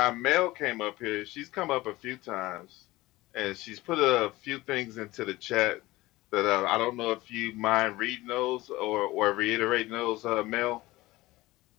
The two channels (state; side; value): quieter; right; 19.0 dB